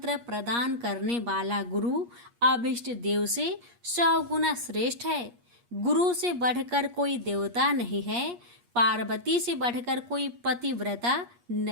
प्रदान करने वाला गुरु अभिष्ट देव से 100 गुना श्रेष्ठ है। गुरु से बढ़कर कोई देवता नहीं है, पार्वती से बढ़कर कोई पतिव्रता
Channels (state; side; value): late; left; 8.4 ms